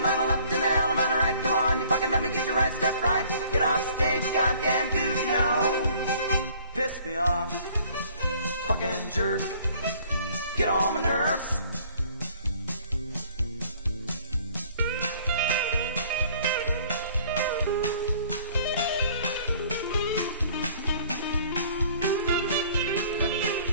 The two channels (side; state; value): both; inverted; correlation -0.55